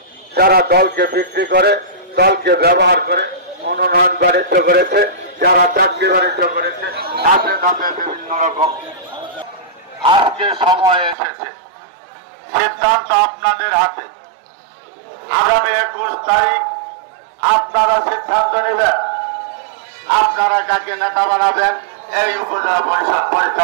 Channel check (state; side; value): drops out; left; at 11.2 s